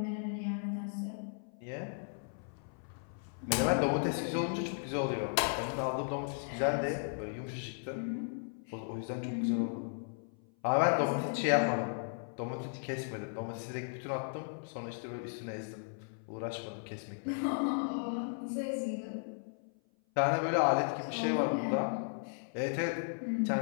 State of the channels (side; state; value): right; silent; 54 dB below the other